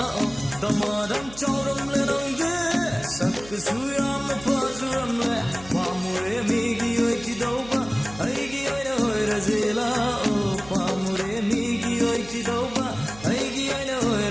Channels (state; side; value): noise; right; hum, 18 dB below the sound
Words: Damadam chauram larangde sakkasu yamna fajaramle pamure megi oi ki dauba aigi oina ore sela pamure megi oi ki dauba aigi oina